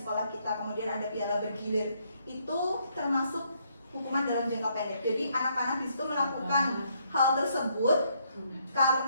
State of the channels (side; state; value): both; inverted; correlation -0.72